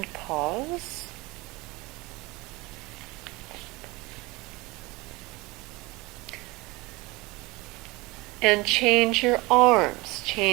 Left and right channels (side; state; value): left; quieter; 23.2 dB